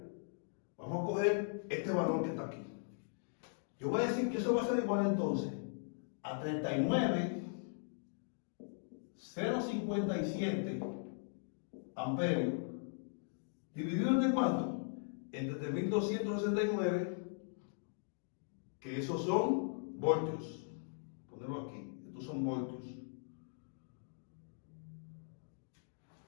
Vamos a coger este valor que está aquí. Yo voy a decir que eso va a ser igual entonces a 39.057 amperios, dividido entre cuánto? Entre 3.269, que esos son voltios. Ponerlo aquí, estos son voltios.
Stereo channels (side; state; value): right; silent; digital silence